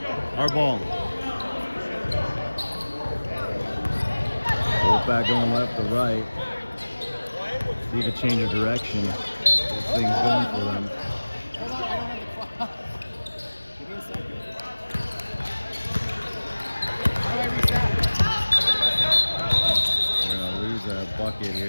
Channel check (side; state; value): both; inverted; correlation -1.00